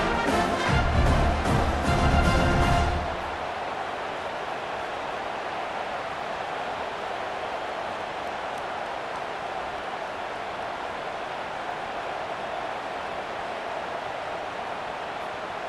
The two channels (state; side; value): identical; both; correlation 1.00